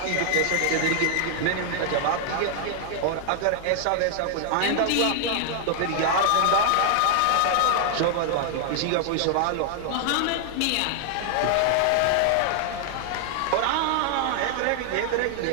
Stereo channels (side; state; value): both; different; correlation 0.00